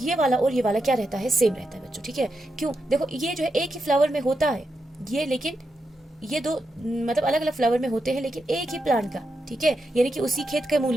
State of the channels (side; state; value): both; normal; correlation 0.86